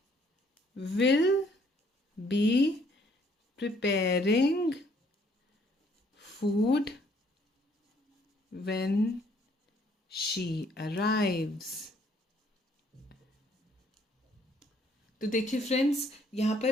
will B preparing food when she arrives। तो देखिए फ्रेंड्स यहाँ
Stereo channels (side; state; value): both; normal; correlation 0.64